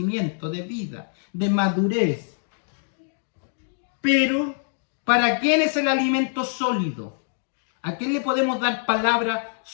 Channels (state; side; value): silent; right; digital silence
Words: de vida, de madurez. Pero, ¿para quién es el alimento sólido? ¿A quién le podemos dar palabra